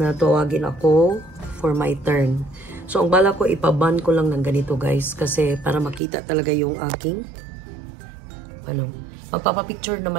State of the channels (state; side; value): drops out; left; at 6.0 s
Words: tawagin ako for my turn. So, ang bala ko, ipaban ko lang ng ganito guys kasi para makita talaga yung aking magpapapicture